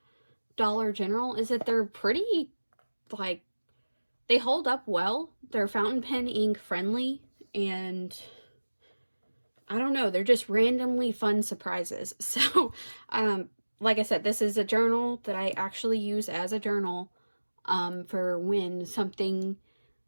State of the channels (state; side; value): inverted; both; correlation -1.00